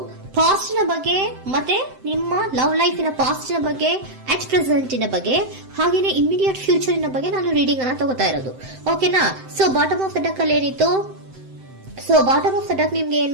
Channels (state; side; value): late; left; 7.7 ms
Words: ಪಾಸ್ಟ್ ನ ಬಗ್ಗೆ ಮತ್ತೆ ನಿಮ್ಮ ಲವ್ ಲೈಫಿನ ಪಾಸ್ಟ್ ನ ಬಗ್ಗೆ, ಅಟ್ ಪ್ರೆಸೆಂಟಿನ ಬಗ್ಗೆ, ಹಾಗೇನೆ ಇಮಿಡಿಯೇಟ್ ಫ್ಯೂಚರಿನ ಬಗ್ಗೆ ನಾನು ರೀಡಿಂಗ್ ಅನ್ನ ತಗೋತಾ ಇರೋದು. ಓಕೆನಾ? So bottom of the duck ಅಲ್ಲಿ ಏನಿತ್ತು? So bottom of the duck ನಿಮ್ಗೆ